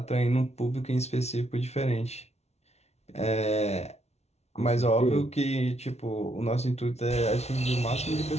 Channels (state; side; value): late; right; 0.31 ms